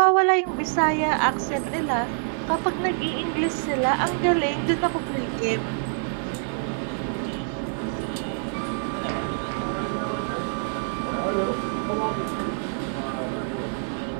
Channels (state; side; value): silent; left; 61 dB below the other